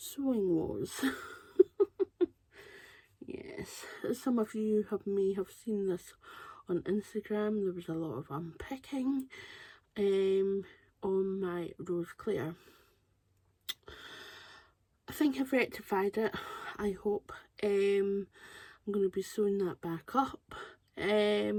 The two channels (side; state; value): both; identical; correlation 1.00